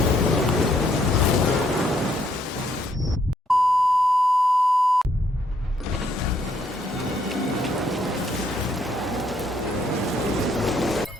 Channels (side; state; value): both; normal; correlation 0.71